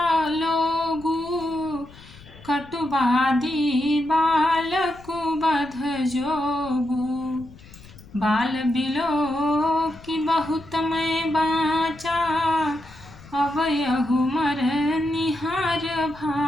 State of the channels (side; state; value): left; noise; rumble, 21 dB below the sound